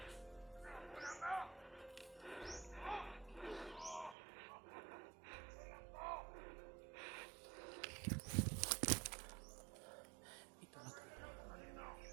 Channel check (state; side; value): drops out; left; at 4.2 s